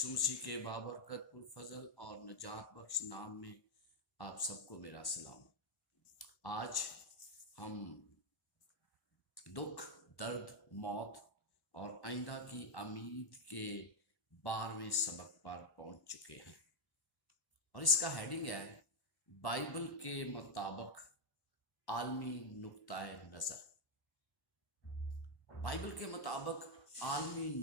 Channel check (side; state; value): right; late; 1.1 ms